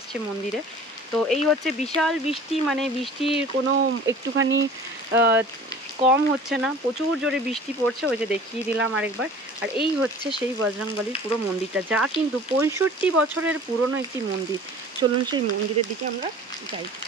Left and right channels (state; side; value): normal; both; correlation 0.44